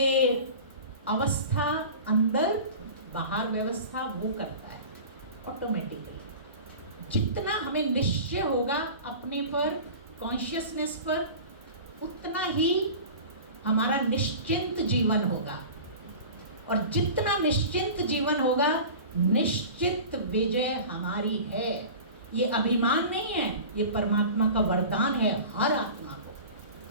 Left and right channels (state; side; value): inverted; both; correlation -0.37